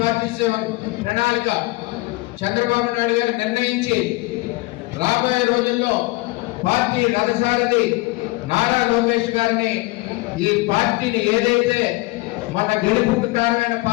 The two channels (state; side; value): quieter; right; 22.4 dB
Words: ప్రణాళిక చంద్రబాబు నాయుడు గారు నిర్ణయించి రాబోయే రోజుల్లో పార్టీ రథసారథి నారా లోకేష్ గారిని ఈ పార్టీని ఏదైతే మన గెలుపుకు కారణమైన